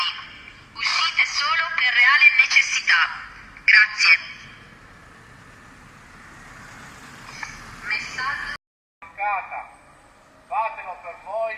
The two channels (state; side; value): identical; both; correlation 1.00